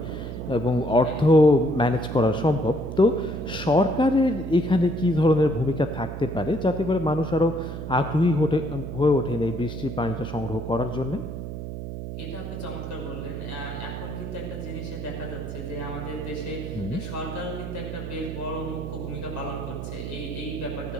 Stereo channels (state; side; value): noise; right; hum, 7 dB below the sound